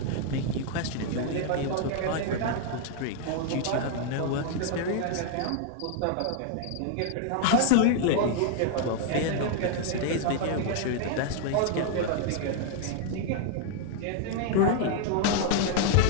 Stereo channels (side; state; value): both; different; correlation 0.00